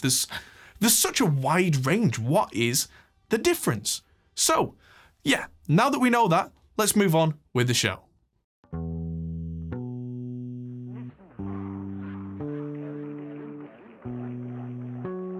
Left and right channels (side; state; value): both; identical; correlation 1.00